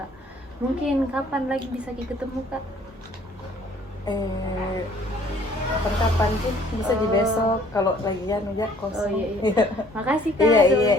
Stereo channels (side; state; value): both; normal; correlation 0.57